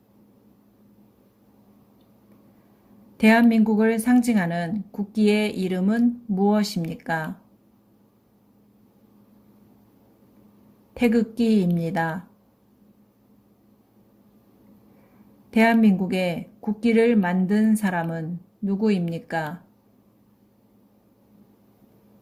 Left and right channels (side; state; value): both; identical; correlation 1.00